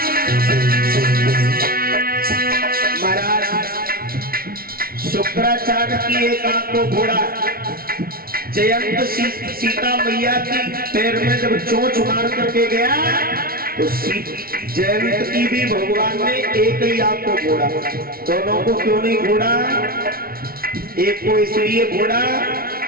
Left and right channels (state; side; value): late; left; 0.43 ms